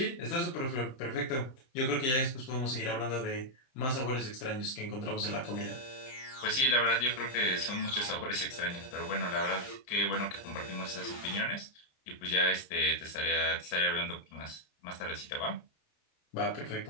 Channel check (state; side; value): late; right; 31 ms